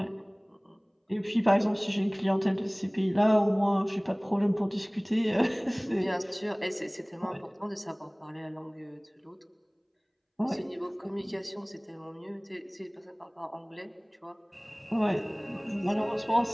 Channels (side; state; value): both; identical; correlation 1.00